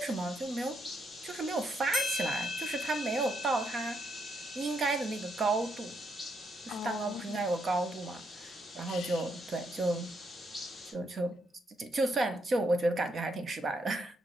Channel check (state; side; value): normal; both; correlation 0.77